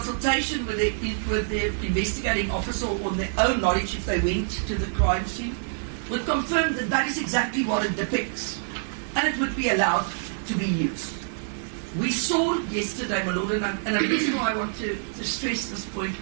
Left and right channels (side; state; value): left; silent; 55 dB below the other